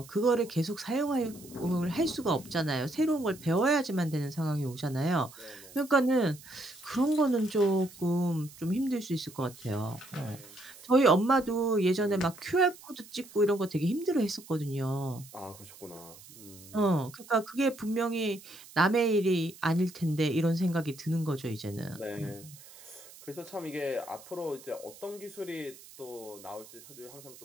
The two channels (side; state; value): right; noise; hiss, 20 dB below the sound